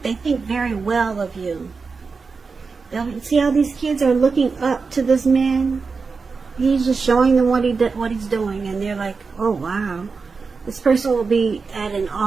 think very well of you. See how these kids are looking up to this man? He's just showing them what he's doing, and they're like, oh wow, this person will be at an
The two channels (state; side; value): quieter; left; 4.7 dB